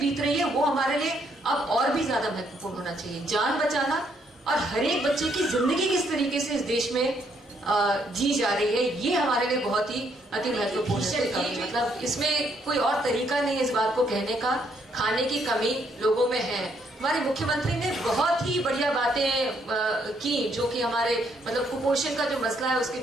रही है वो हमारे लिए अब और भी ज्यादा महत्वपूर्ण होना चाहिए। जान बचाना और हर एक बच्चे की जिंदगी किस तरीके से इस देश में जी जा रही है, ये हमारे लिए बहुत ही अति महत्वपूर्ण है। मतलब इसमें कोई और तरीका नहीं है इस बात को कहने का। खाने की कमी लोगों में है। हमारे मुख्यमंत्री ने बहुत ही बढ़िया बातें की, जो कि हमारे मतलब कुपोषण का जो मसला है उसके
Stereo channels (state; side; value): normal; both; correlation 0.71